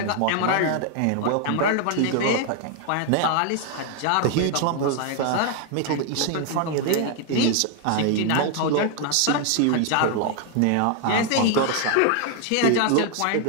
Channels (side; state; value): both; different; correlation 0.00